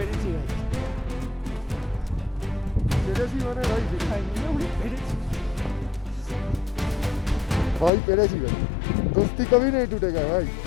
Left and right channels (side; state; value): right; drops out; at 7.9 s